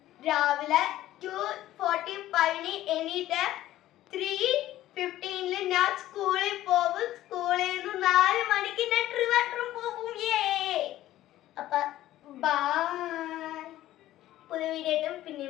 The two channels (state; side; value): quieter; right; 14.3 dB